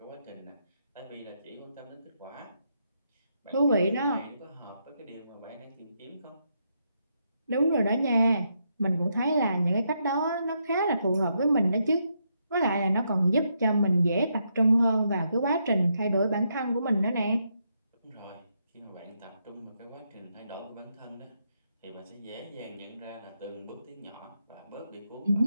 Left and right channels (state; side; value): inverted; both; correlation -0.79